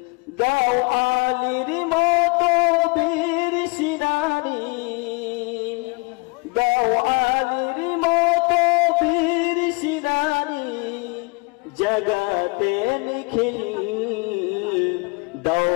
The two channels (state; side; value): quieter; right; 29.1 dB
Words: গাও আলীর মতো বীর সিনানি, গাও আলীর মতো বীর সিনানি জগতে নিখিল, দাও